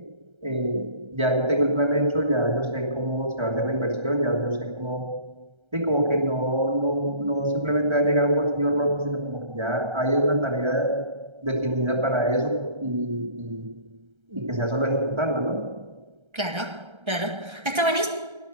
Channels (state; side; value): late; left; 1.3 ms